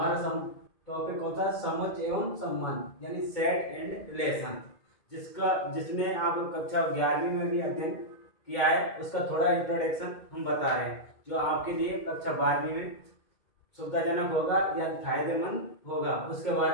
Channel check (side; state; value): right; late; 2.2 ms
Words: टॉपिक होता है समझ एवं संबंध यानी सेट एंड रिलेशन, जिसने आप कक्षा 11वीं में भी अध्ययन किया है। उसका थोड़ा इंट्रोडक्शन हम बता रहे हैं जो आपके लिए कक्षा 12वीं में सुविधाजनक होगा या फायदेमंद होगा, उसके